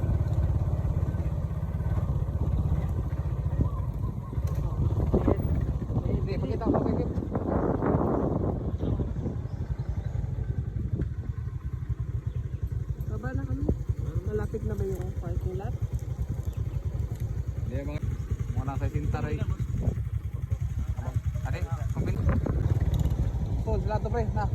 Baba na kami. Malapit na ba yung parking lot? Hindi, mga nasa Sintaray. Ate, kumpin. Tol, sila to pre, na.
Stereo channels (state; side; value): identical; both; correlation 1.00